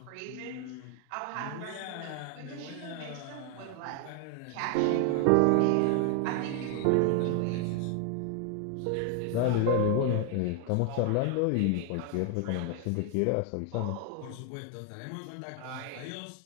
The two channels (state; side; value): different; both; correlation 0.00